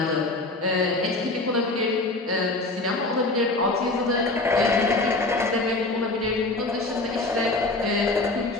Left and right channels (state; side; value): quieter; right; 3.0 dB